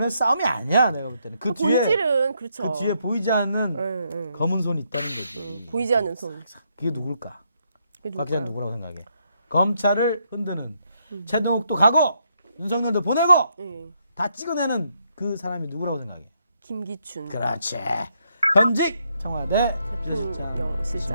싸움이 아니야. 내가 볼 때는 그 뒤에 본질은 그렇죠. 그 뒤에 보이지 않는 예. 검은 손이 있다는 거지. 보이지 않는 손. 그게 누굴까? 그게 곽 기자 누굴까요? 누구라고 생각해? 검찰을 흔드는 최동욱도 가고 윤석열도 보내고 예. 다 찍어내는 그 사람이 누구라고 생각해? 김기춘. 그렇지. 현직 청와대 대통령 실장. 네,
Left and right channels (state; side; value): inverted; both; correlation -0.76